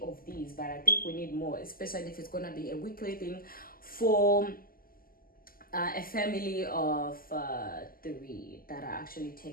these, but I think we need more, especially if it's gonna be a weekly thing for a family of 3 that I actually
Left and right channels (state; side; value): late; right; 0.42 ms